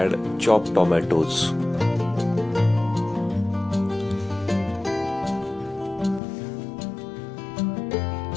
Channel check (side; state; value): right; drops out; at 6.2 s